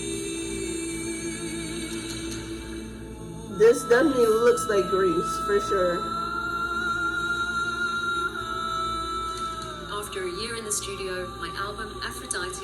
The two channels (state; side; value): identical; both; correlation 1.00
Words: This definitely looks like Greece, for sure. After a year in the studio, my album